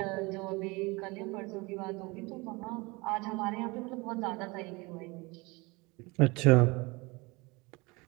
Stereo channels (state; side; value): quieter; left; 25.3 dB